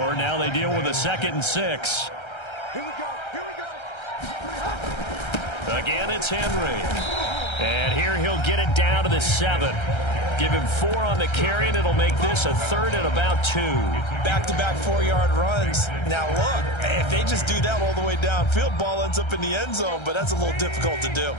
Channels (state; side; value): late; right; 1.3 ms